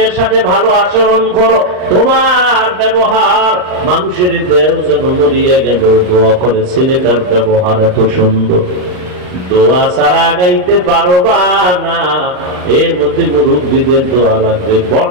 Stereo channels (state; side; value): late; left; 39 ms